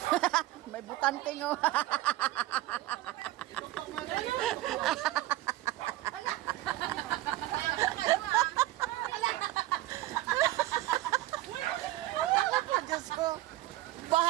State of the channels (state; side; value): quieter; left; 16.4 dB